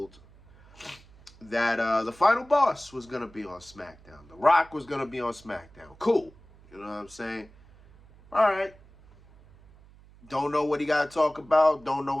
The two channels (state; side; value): noise; right; hum, 25 dB below the sound